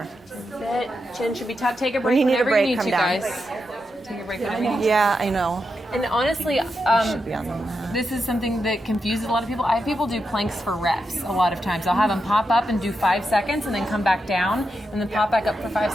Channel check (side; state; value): both; normal; correlation 0.86